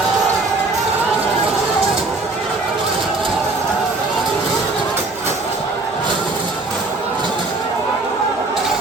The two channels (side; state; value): left; quieter; 3.3 dB